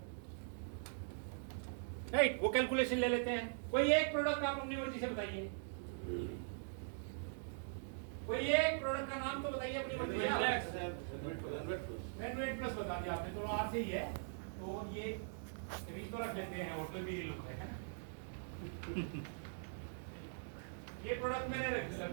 राइट? वो कैलकुलेशन ले लेते हैं। कोई एक प्रोडक्ट आप अपनी मर्जी से बताइए, कोई एक प्रोडक्ट का नाम तो बताइए अपनी मर्जी से। रेनवेट प्लस बता दिया आपने, तो आर से ही है, तो ये रीच तो रख लेते हैं, होटल भी लोग है ना। ये प्रोडक्ट मैंने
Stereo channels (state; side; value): silent; left; digital silence